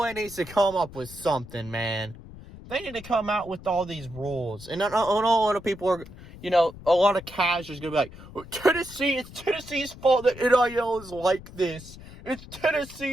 needs to come up with something, man. They need to come out with all these rules. And I know a lot of people are, a lot of casuals going to be like, it's Tennessee's fault that NIL is like this. It's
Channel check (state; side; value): noise; left; rumble, 17 dB below the sound